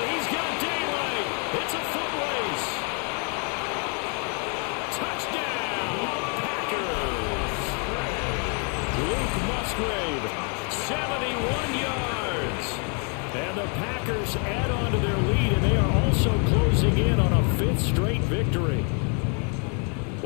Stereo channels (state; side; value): quieter; right; 37.8 dB